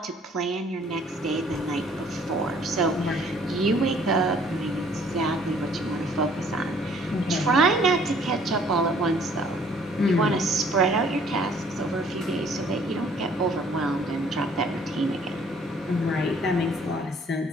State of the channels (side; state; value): both; normal; correlation 0.58